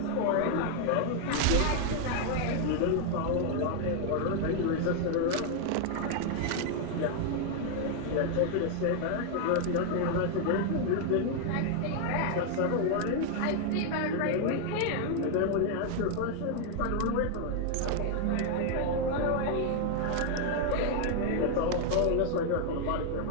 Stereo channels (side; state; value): both; different; correlation 0.00